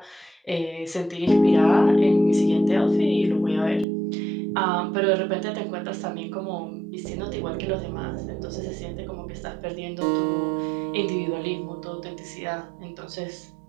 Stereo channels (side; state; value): left; drops out; at 3.9 s